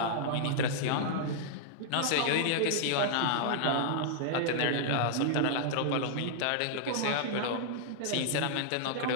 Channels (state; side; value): different; both; correlation -0.01